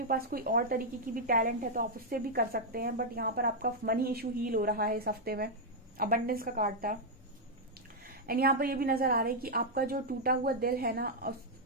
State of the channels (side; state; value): both; normal; correlation -0.04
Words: पास कोई और तरीके की भी टैलेंट है तो आप उससे भी कर सकते हैं। बट यहाँ पर आपका मनी इशू हील हो रहा है इस हफ्ते में, अबंडेंस का कार्ड था। एंड यहाँ पर ये भी नजर आ रहा है कि आपका जो टूटा हुआ दिल है ना,